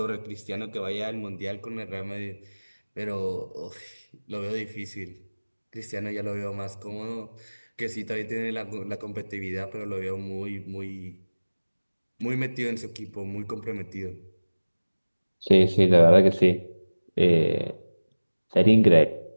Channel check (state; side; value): inverted; both; correlation -1.00